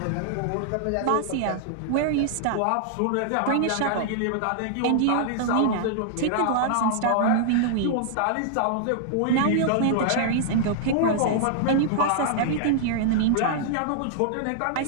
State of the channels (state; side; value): different; both; correlation -0.01